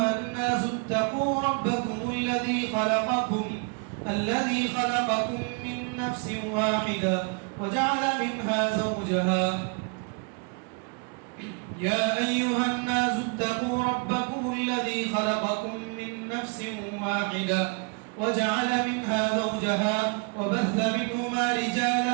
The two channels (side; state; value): left; quieter; 33.9 dB